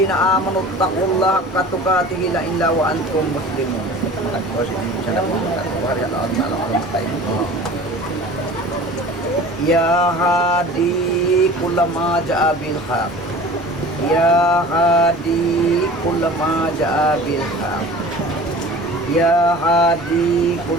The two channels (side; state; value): both; normal; correlation 0.41